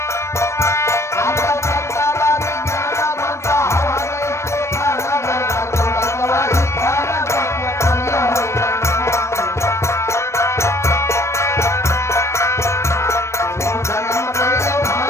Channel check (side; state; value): right; late; 0.13 ms